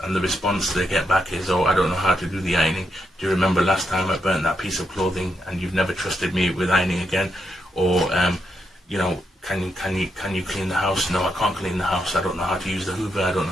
the response they get back is, oh, I don't know how to do the ironing. Do you remember last time I burnt that piece of clothing and you've never trusted me with ironing again? Or, can you clean the house? No, I can't clean the house. I don't know how to use the Hoover. I don't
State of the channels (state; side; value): normal; both; correlation 0.81